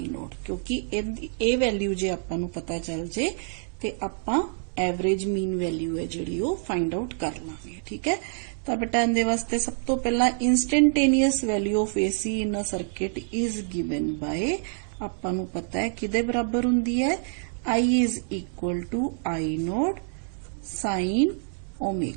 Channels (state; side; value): silent; left; 59 dB below the other